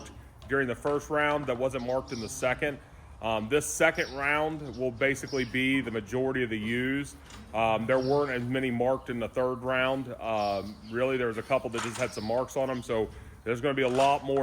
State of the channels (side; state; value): both; identical; correlation 1.00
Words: during the first round that wasn't marked in the second. This second round will basically be the majority of the ewes. There weren't as many marked in the third round. Really, there was a couple that just had some marks on them. So there's going to be a lot